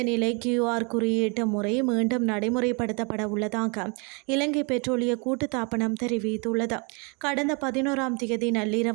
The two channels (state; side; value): quieter; left; 32.7 dB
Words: நிலை QR குறியீட்டு முறை மீண்டும் நடைமுறைப்படுத்தப்பட உள்ளதாக இலங்கை பெட்ரோலிய கூட்டுத்தாபனம் தெரிவித்துள்ளது. கடந்த 11ஆம் தேதி